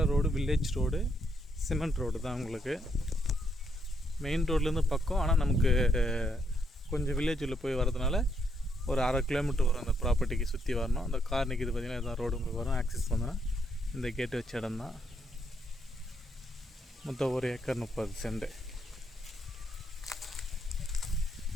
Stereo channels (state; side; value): normal; both; correlation 0.76